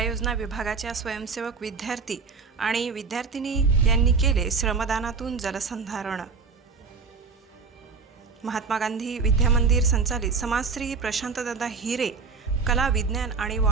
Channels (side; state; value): left; quieter; 5.0 dB